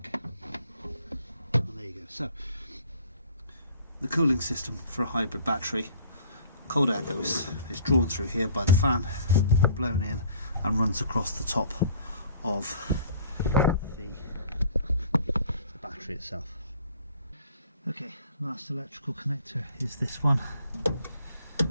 and there you go. So the cooling system for a hybrid battery, cold air is drawn through here by the fan, blown in, and runs across the top of the battery itself. Okay, last electrical connector is this one.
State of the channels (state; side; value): inverted; both; correlation -0.52